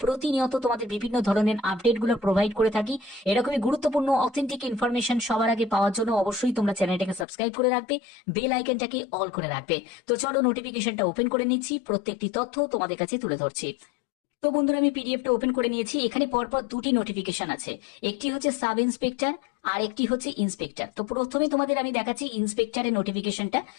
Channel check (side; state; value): right; drops out; at 7.2 s